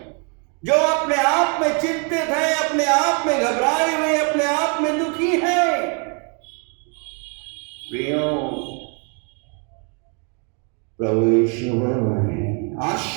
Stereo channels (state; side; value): quieter; left; 37.2 dB